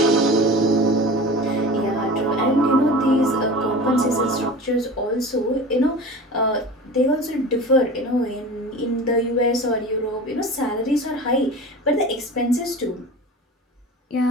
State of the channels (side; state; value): both; normal; correlation 0.34